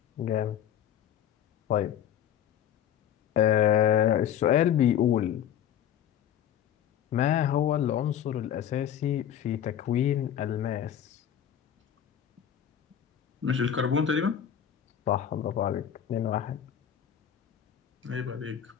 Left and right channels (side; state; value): right; quieter; 9.8 dB